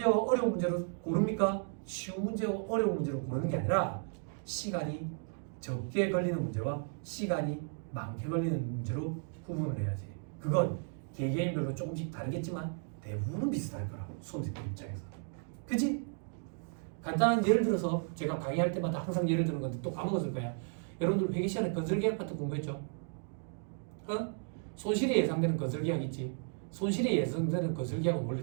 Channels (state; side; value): silent; left; 55 dB below the other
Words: 어려운 문제로 고릅니까? 쉬운 문제와 어려운 문제로 고르는 게 아니라 시간이 적게 걸리는 문제와 시간이 많게 걸리는 문제로 구분을 해야지. 그건 개개인별로 조금씩 다르겠지만 대부분은 비슷할 거라. 수험생들 입장에서. 그치? 간단한 예를 들어서 제가 강의할 때마다 항상 예를 드는 건데 또 까먹었을 거야. 여러분들 회계 시간에 건설계약 파트 공부했죠? 어? 손실이 예상되는 건설계약 있지? 손실이 예상되는 건설계약은